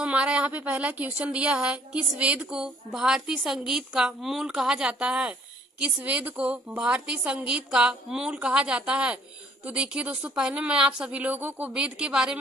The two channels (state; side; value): normal; both; correlation 0.60